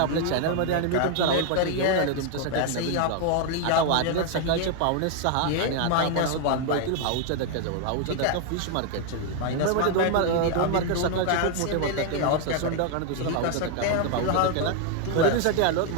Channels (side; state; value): both; different; correlation 0.00